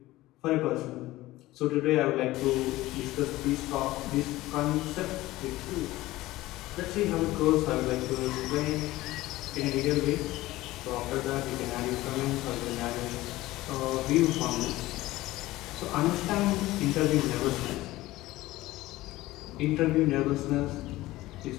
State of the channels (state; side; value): quieter; right; 17.6 dB